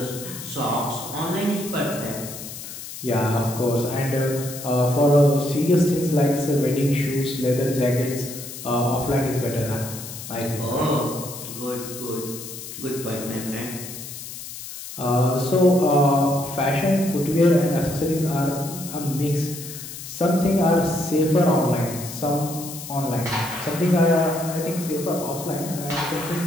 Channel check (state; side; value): noise; left; hiss, 11 dB below the sound